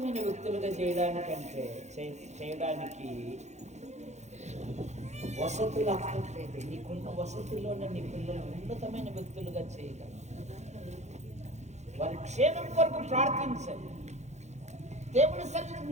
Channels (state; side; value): late; left; 0.33 ms